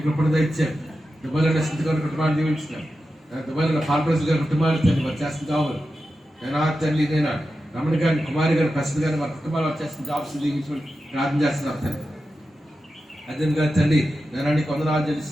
కృపణ ఇచ్చాను దుబాయ్లో స్థితి గారి కుటుంబాన్ని దీవించినాను దుబాయ్లో ఫార్మర్స్ గారి కుటుంబాలు తండ్రి వారు చేస్తున్న కావాలి నేను తండ్రి నేను రమణ గారిని కుమారి గారిని ప్రసిద్ధి గారిని వారి కుటుంబాలు వారు చేస్తున్న జాబ్స్ దీవించమని ప్రార్థన చేస్తున్నాను తండ్రి అదేవిధంగా తండ్రి నేను నీకు వందనాలు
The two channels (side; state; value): both; normal; correlation 0.91